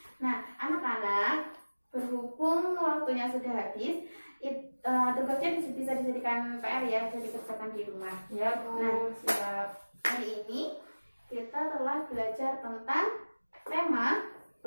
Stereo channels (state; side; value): inverted; both; correlation -1.00